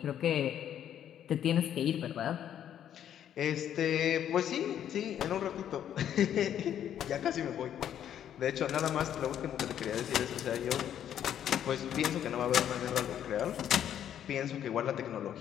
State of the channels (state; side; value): quieter; right; 10.1 dB